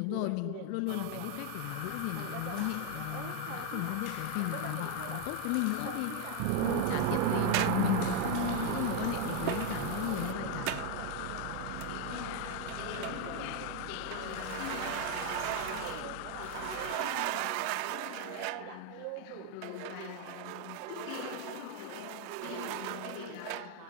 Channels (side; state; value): both; different; correlation 0.01